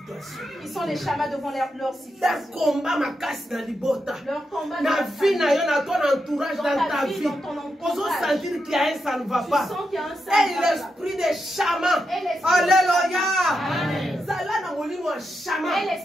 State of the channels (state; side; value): normal; both; correlation 0.85